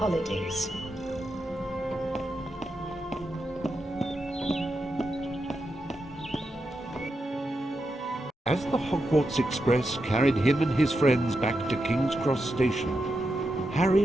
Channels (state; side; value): normal; both; correlation 0.87